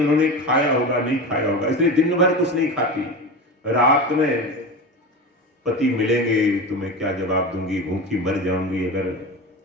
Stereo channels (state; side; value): normal; both; correlation 0.26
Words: खाया होगा नहीं खाया होगा, इसलिए दिन भर कुछ नहीं खाती। रात में पति मिलेंगे तो मैं क्या जवाब दूंगी, भूखी मर जाऊंगी अगर